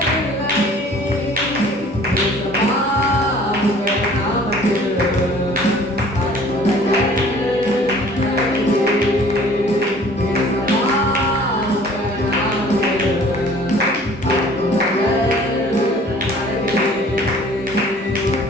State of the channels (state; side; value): normal; both; correlation 0.51